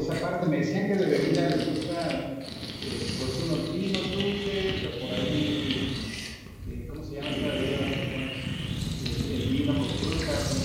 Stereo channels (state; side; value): identical; both; correlation 1.00